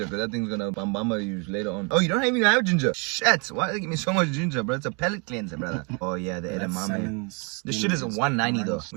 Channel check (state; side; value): quieter; left; 33.9 dB